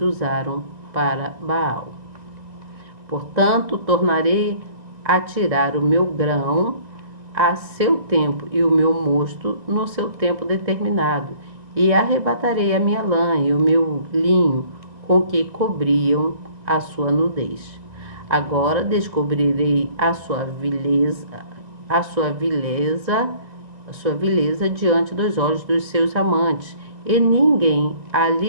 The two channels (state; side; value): late; left; 2.0 ms